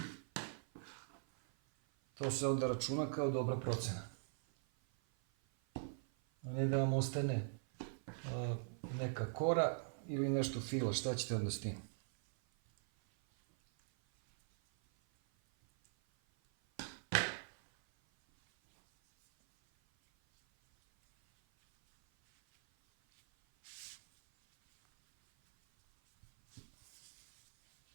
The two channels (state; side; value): silent; left; 51 dB below the other